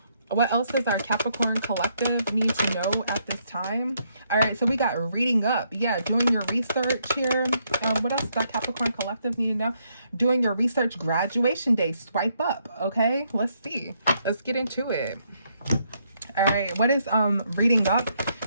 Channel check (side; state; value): both; inverted; correlation -0.74